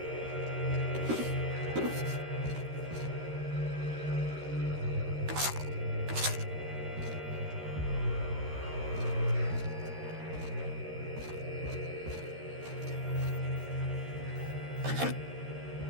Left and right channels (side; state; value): left; late; 13 ms